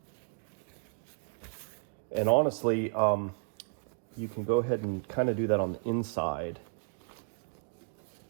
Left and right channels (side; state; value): left; silent; digital silence